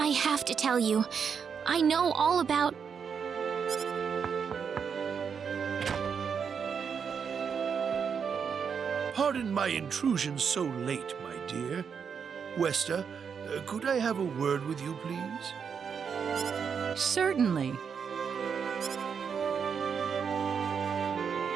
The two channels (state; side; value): quieter; left; 6.7 dB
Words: have to tell you, I know all about... Pardon my intrusion so late, my dear. Westa, could I have a word with you, please? Certainly.